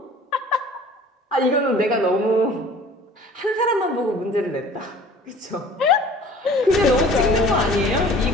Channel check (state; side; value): normal; both; correlation 0.47